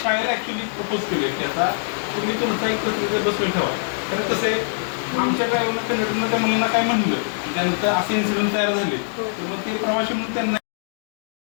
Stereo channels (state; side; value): silent; right; digital silence